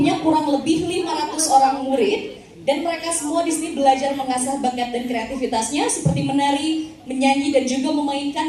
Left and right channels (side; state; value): both; identical; correlation 1.00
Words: kurang lebih 500 orang murid. Dan mereka semua di sini belajar mengasah bakat dan kreativitasnya seperti menari, menyanyi, dan juga